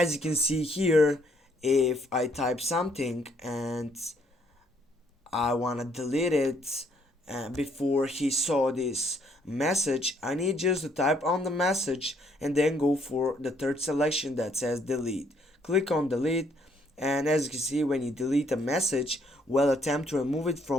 you can see here, if I type something and I want to delete it before he saw this message, I need just to type on the message and then go for the third selection that says delete. Click on delete, and as you can see, when you delete a message while attempt to remove it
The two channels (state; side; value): normal; both; correlation 0.67